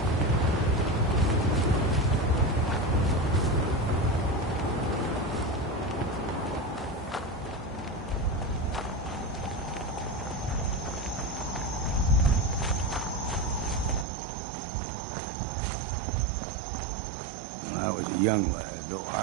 When I was a young lad, no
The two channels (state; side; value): drops out; left; at 14.1 s